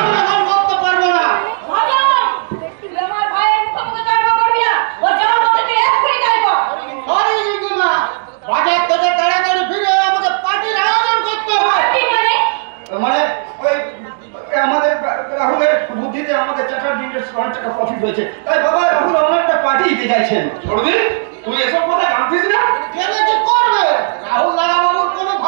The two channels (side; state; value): left; silent; digital silence